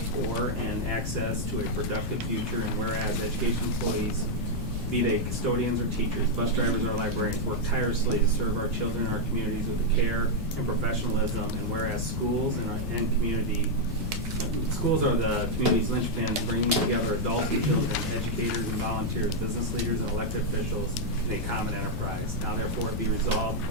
and access to a productive future. And whereas education employees, be they custodians or teachers, bus drivers or librarians, work tirelessly to serve our children and our communities with the care and professionalism. And whereas schools and schools are the community's linchpins, bringing together adults and children, educators and volunteers, business leaders and elected officials in a common enterprise. Now therefore it be resolved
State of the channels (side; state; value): left; noise; rumble, 6 dB below the sound